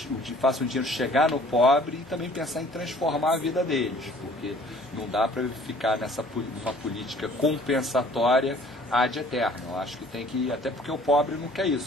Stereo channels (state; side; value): normal; both; correlation 0.54